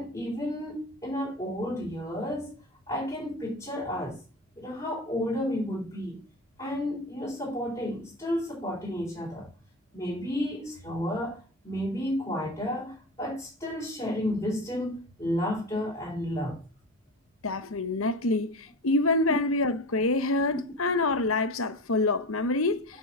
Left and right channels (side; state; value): both; normal; correlation 0.27